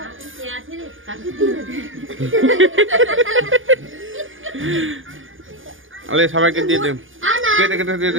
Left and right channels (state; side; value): late; left; 0.58 ms